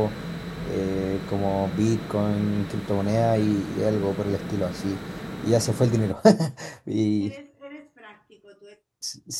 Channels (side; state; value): both; identical; correlation 1.00